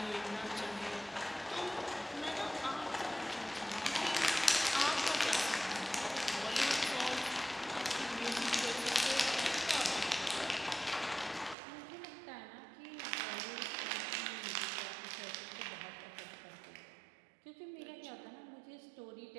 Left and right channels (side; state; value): left; drops out; at 11.6 s